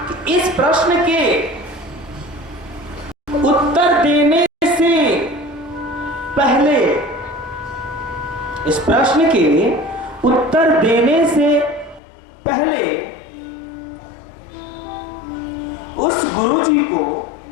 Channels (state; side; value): drops out; right; at 12.0 s